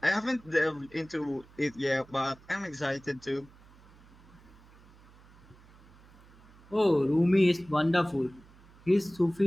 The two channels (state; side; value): noise; right; hum, 25 dB below the sound